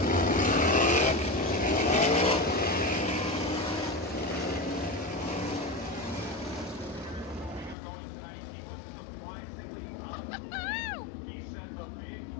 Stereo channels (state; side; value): drops out; right; at 7.8 s